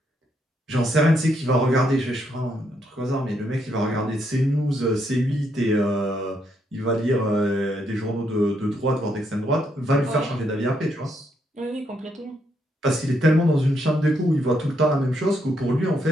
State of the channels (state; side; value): normal; both; correlation 0.76